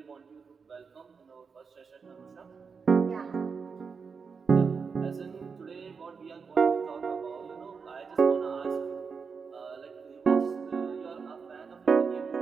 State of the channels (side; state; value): left; quieter; 5.5 dB